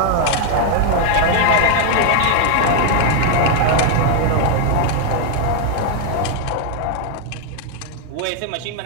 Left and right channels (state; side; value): different; both; correlation 0.00